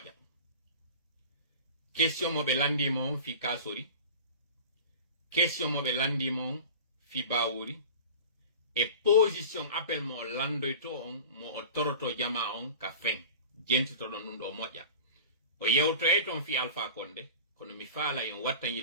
question mo be landi mon fi kasori, question mo be landi mon fi bawuri, e position appel mo landoyto on mo o toroto jama on ka fen jentito don ɗum ɗo moƴƴa o yewtoye ton fi Alpha Condé kono mi faala en watta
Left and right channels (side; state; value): both; inverted; correlation -0.37